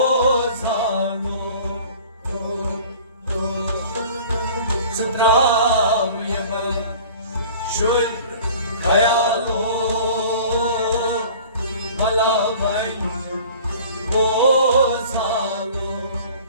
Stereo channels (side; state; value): both; inverted; correlation -0.46